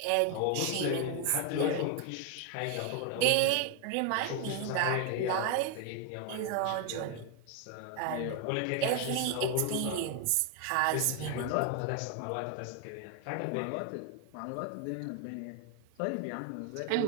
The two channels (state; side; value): different; both; correlation 0.01